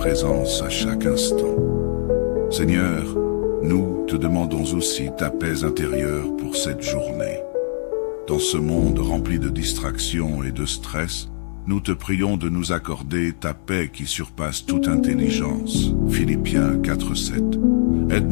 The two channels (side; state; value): right; silent; 65 dB below the other